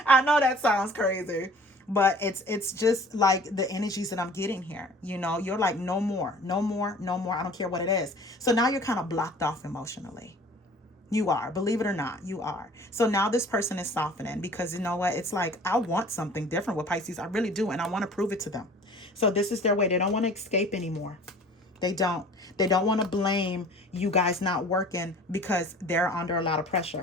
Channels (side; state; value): both; normal; correlation 0.47